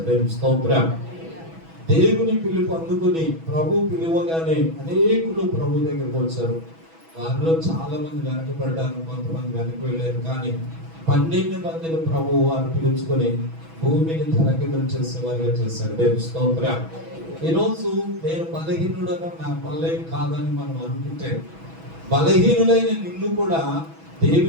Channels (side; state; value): left; late; 6.1 ms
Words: దేవుని స్తోత్రం. దేవుని పిలుపు అందుకుని ప్రభు పిలువగానే అనేకులు ప్రభు దగ్గరికి వచ్చారు. వారిలో చాలా మంది వెనకబడ్డారు, కొంతమంది వెనక వెళ్ళారు. కానీ 12 మందిని ప్రభు వారు పిలుచుకొని భూమిని తలకిందులు చేసేవారిగా చేశారు. దేవుని స్తోత్రం. ఈరోజు నేను బలహీనుడగా నా వల్ల కాదని మనం అనుకుంటే, బలహీనులైన నిన్ను కూడా